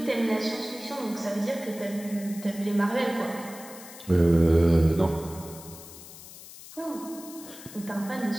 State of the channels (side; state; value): left; noise; hiss, 16 dB below the sound